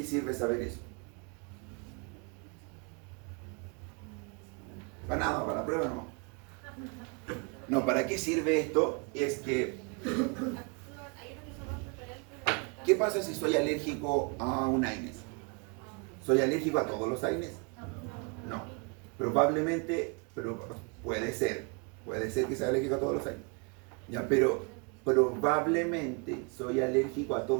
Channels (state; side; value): quieter; left; 33.8 dB